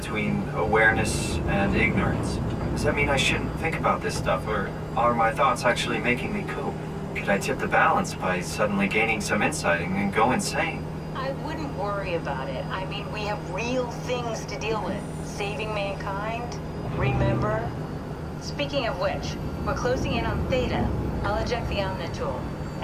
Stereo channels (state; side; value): identical; both; correlation 1.00